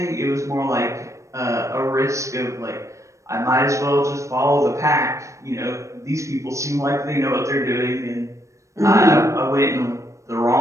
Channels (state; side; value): late; left; 0.15 ms